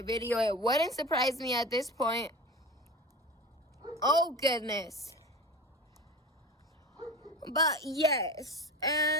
video. It wouldn't surprise me at this point. Oh goodness. But yes,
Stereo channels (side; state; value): both; normal; correlation 0.32